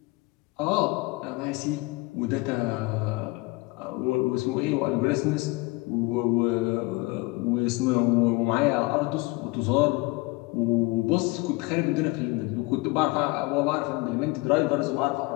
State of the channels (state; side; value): quieter; right; 23.4 dB